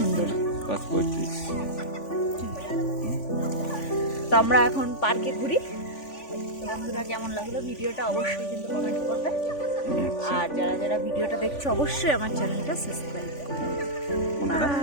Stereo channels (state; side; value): late; right; 3.5 ms